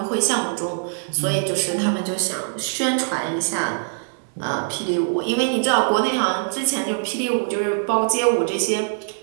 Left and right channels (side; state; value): left; silent; digital silence